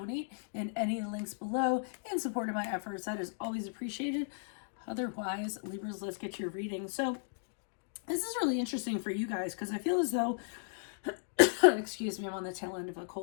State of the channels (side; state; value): right; silent; digital silence